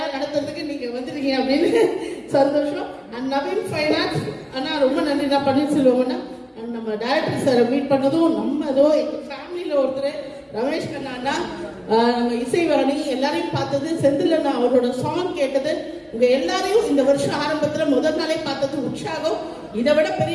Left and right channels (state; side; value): identical; both; correlation 1.00